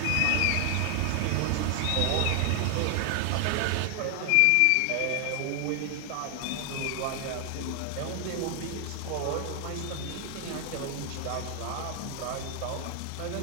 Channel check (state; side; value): different; both; correlation 0.00